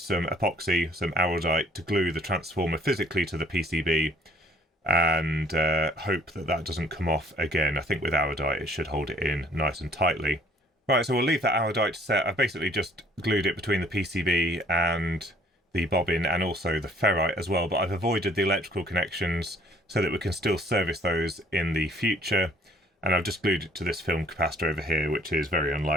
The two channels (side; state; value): both; normal; correlation 0.58